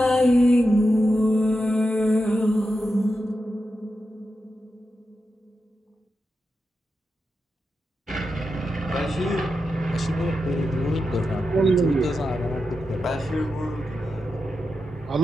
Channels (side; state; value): both; normal; correlation 0.89